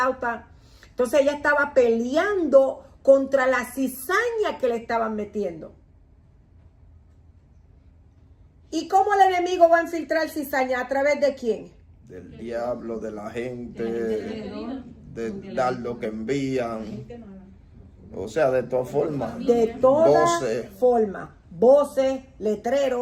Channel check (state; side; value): identical; both; correlation 1.00